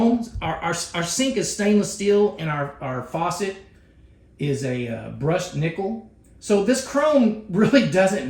our sink is stainless steel, and our faucet is a brushed nickel. So this chrome really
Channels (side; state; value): both; identical; correlation 1.00